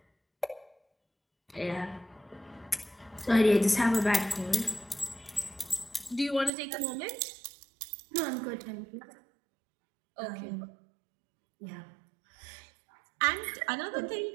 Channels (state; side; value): drops out; left; at 6.5 s